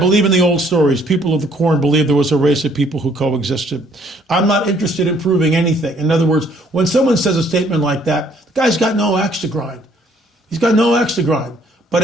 in the old stories. People of the corn believe there was a race of people who coexisted. I'm not interested in proving anything. In other words, when someone says a statement like that, the guy's got no axe to grind. He's got no axe to grind. But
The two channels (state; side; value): normal; both; correlation 0.63